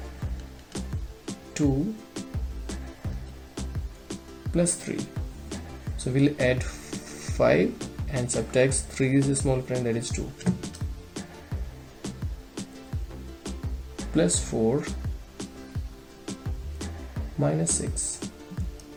2 plus 3. So we'll add 5 and subtract 3's small friend, that is 2, plus 4, minus 6.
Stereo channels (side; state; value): both; identical; correlation 1.00